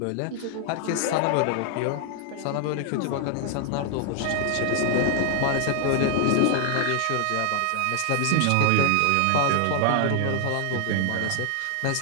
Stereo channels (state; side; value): different; both; correlation 0.00